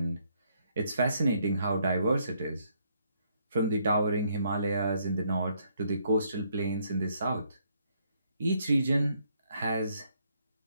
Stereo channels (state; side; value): inverted; both; correlation -0.71